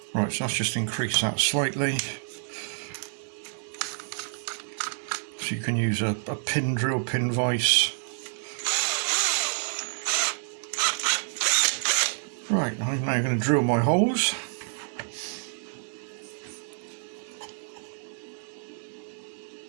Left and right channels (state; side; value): silent; left; digital silence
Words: Right, so let's just increase that slightly. So you can use a pin drill, pin vise. Right, I'm now going to drill my holes.